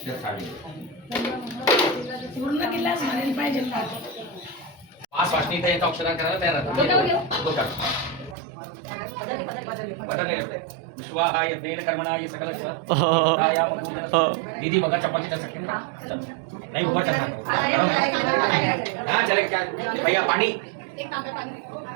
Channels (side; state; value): left; drops out; at 8.3 s